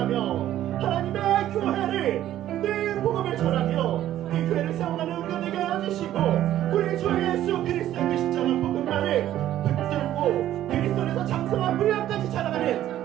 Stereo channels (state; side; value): quieter; left; 12.6 dB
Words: 하나님의 교회를 늘 복음을 전하며 이 교회를 세워가는 우리가 되게 하여 주시고 우리 주 예수 그리스도의 그 십자가 복음만을 붙들고 그리스도에서 장성한 분량까지 자라가는